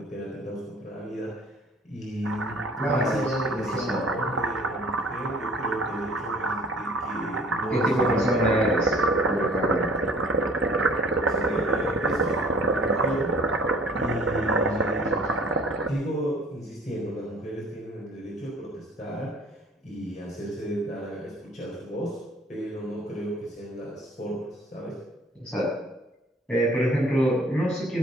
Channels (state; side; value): normal; both; correlation 0.52